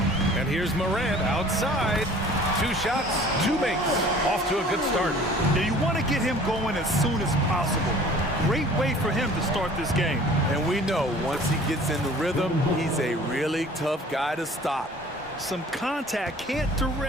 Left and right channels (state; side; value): normal; both; correlation 0.49